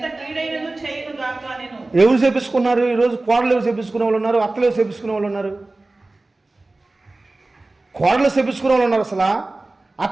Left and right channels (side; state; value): left; quieter; 3.0 dB